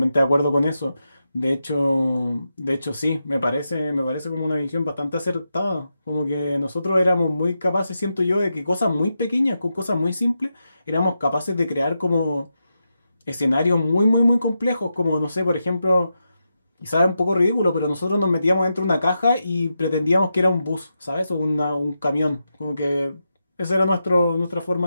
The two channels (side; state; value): both; inverted; correlation -0.87